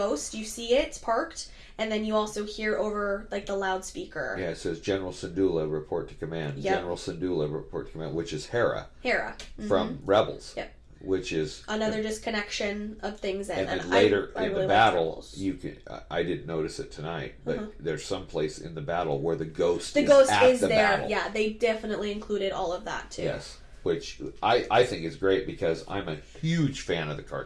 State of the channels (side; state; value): both; identical; correlation 1.00